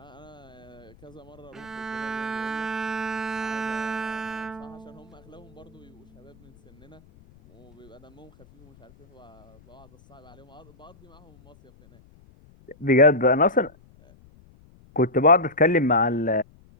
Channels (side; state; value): left; noise; rumble, 26 dB below the sound